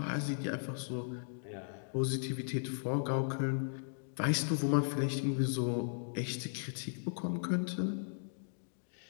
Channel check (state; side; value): silent; right; digital silence